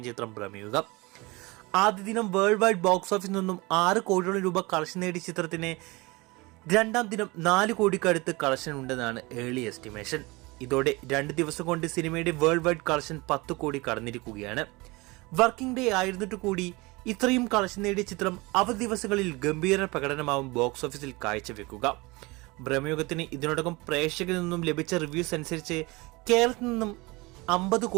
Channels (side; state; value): left; quieter; 23.9 dB